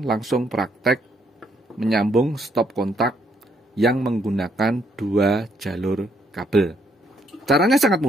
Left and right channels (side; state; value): both; normal; correlation 0.71